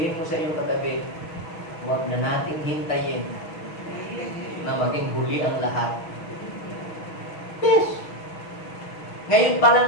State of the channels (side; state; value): right; late; 6.3 ms